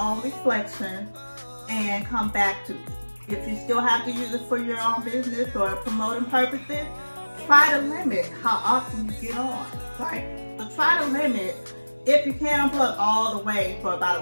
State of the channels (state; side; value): inverted; both; correlation -1.00